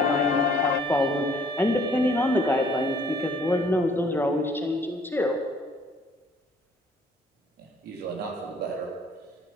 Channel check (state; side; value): normal; both; correlation 0.59